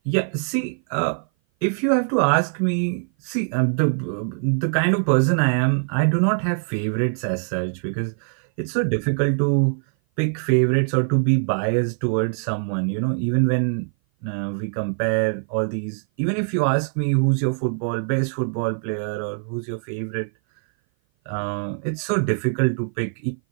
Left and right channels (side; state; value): left; silent; 57 dB below the other